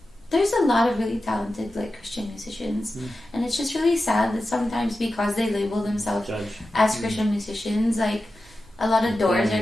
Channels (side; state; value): both; normal; correlation 0.93